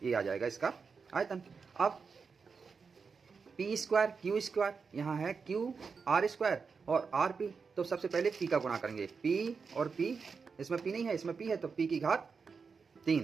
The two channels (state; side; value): quieter; left; 5.3 dB